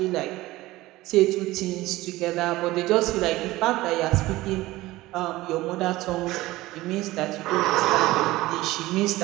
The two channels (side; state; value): left; quieter; 18.2 dB